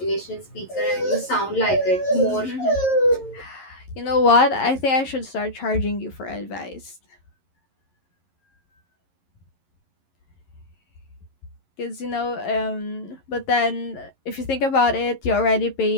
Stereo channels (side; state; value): right; late; 11 ms